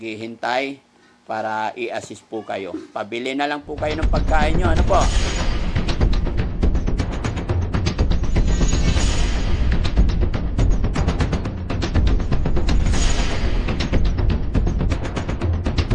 para i-assist po kayo. Pabili na lang po kayo ng pagkain nyo. Ano po?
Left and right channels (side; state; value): both; identical; correlation 1.00